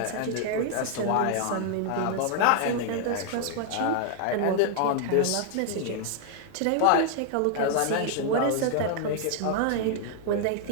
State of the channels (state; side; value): different; both; correlation 0.00